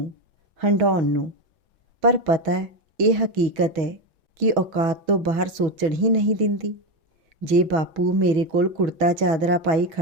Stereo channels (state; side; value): late; left; 6.2 ms